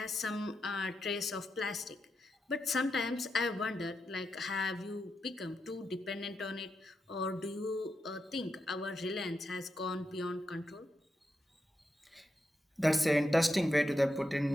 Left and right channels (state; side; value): normal; both; correlation 0.86